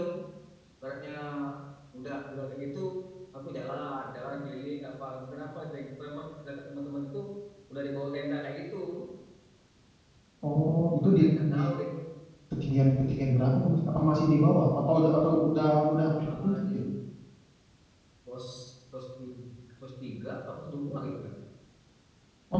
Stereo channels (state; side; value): identical; both; correlation 1.00